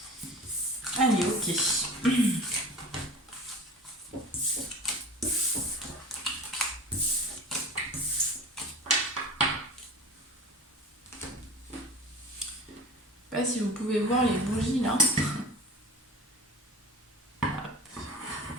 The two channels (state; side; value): normal; both; correlation 0.37